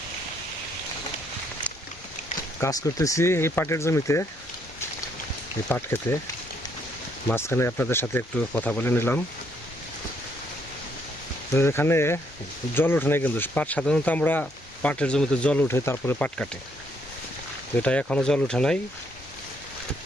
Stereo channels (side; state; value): both; normal; correlation 0.71